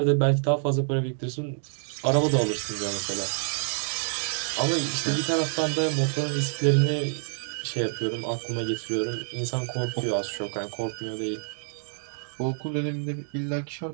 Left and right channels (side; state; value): left; silent; 58 dB below the other